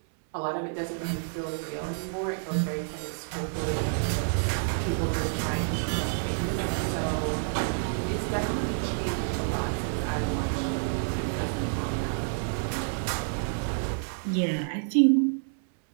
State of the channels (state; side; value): silent; left; 59 dB below the other